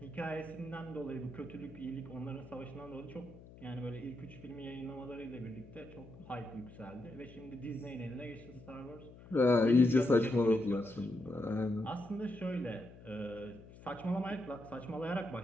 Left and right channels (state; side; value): noise; left; hum, 18 dB below the sound